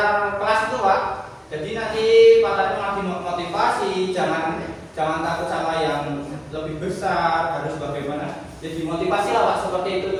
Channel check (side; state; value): both; identical; correlation 1.00